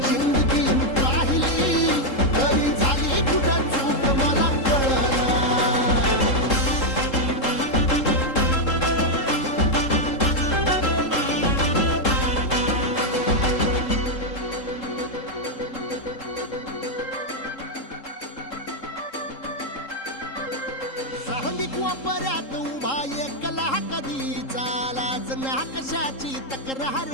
जिंदगी पाहिली तरी झाली कुठं चूक मला कळना वापऱ्यात उभा एकला कधी चालाच ना कशाची तक्रार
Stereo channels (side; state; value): right; late; 3.7 ms